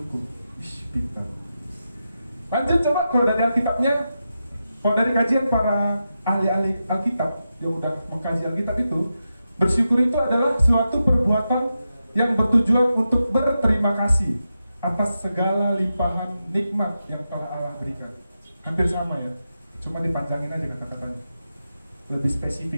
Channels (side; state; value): both; inverted; correlation -0.89